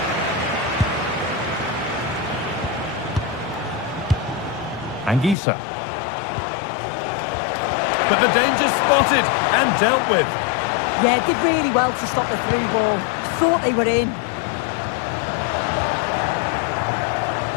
Anguissa. But the danger spotted and dealt with. Yeah, did really well to stop the through ball. Thought they were in.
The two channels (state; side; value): drops out; right; at 5.4 s